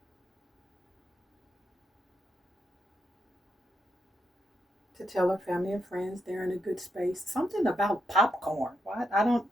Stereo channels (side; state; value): both; normal; correlation 0.81